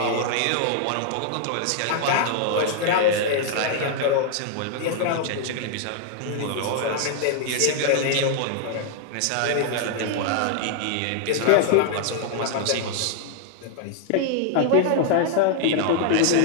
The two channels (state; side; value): different; both; correlation 0.00